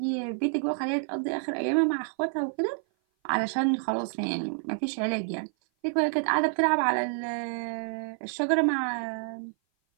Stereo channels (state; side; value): silent; left; 56 dB below the other